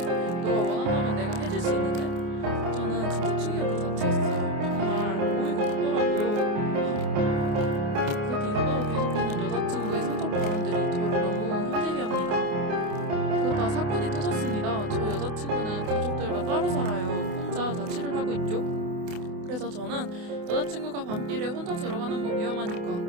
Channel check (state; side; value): late; left; 28 ms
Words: 너가 원한다면 내가 해줄 수 있는데? 저는 진짜 충격 그 자체였어요. 정말 어이가 없더라고요. 그 뒤로도 계속되는 여자친구의 성적 발언들이 저를 너무 힘들게 합니다. 그러다 사건이 터졌습니다. 저희 여자친구는 가족들과 따로 살아요. 혼자 자취를 하고 있죠. 그래서 저는 여자친구가 밤길에 혼자 들어가는 거